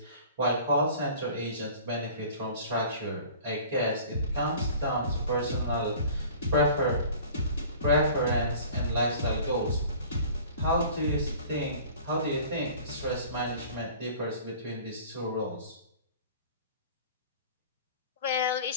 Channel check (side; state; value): both; inverted; correlation -0.45